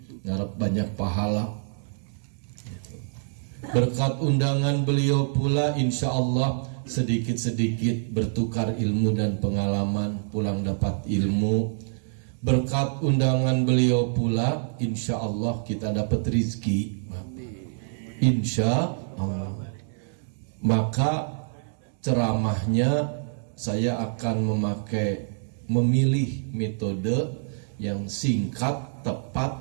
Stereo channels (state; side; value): silent; left; digital silence